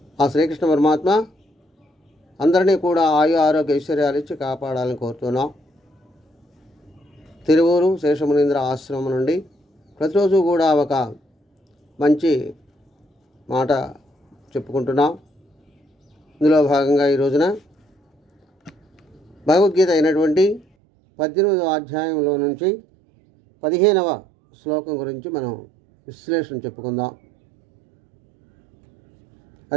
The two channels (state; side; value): drops out; left; at 20.7 s